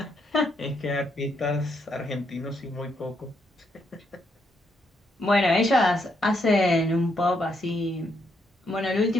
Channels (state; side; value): normal; both; correlation 0.77